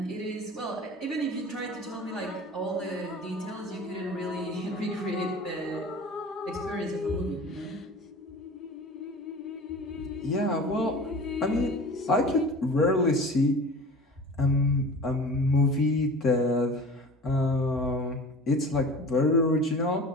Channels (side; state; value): both; normal; correlation 0.39